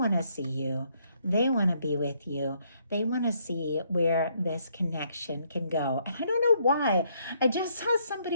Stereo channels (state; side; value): inverted; both; correlation -0.70